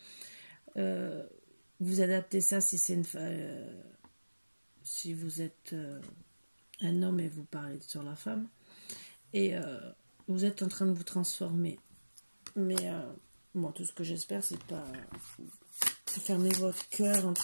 vous adaptez ça si c'est si vous êtes un homme et vous parlez sur la femme, et vous êtes en train de vous transformer. Mais bon, tout ce que j'espère, c'est pas fermer votre cœur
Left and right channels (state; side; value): inverted; both; correlation -1.00